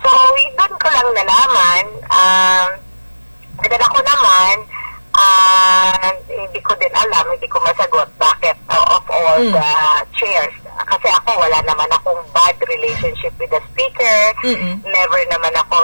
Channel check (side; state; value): both; inverted; correlation -1.00